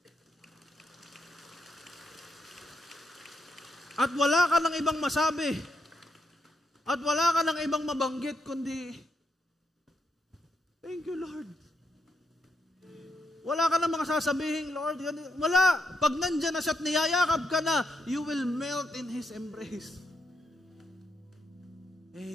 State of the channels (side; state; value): both; normal; correlation 0.80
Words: At wala ka ng ibang masabi. At wala ka ng ibang mabanggit, kundi, thank you, Lord. Wala ka ng mga sasabihin, Lord. Wala. Pag nandyan na siya at niyayakap ka na, you will melt in His embrace.